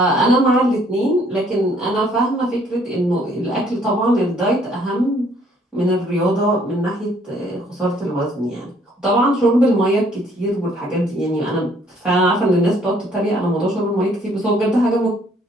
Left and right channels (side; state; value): both; normal; correlation 0.63